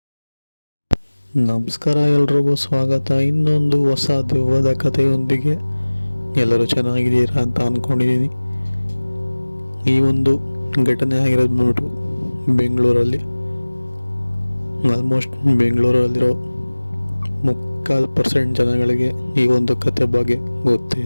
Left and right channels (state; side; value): inverted; both; correlation -1.00